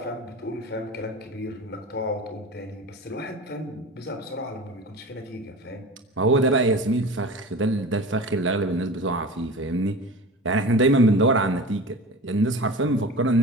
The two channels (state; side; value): normal; both; correlation 0.34